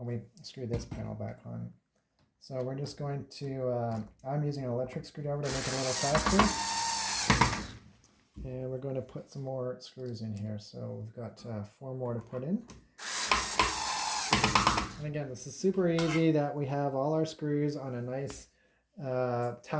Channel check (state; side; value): identical; both; correlation 1.00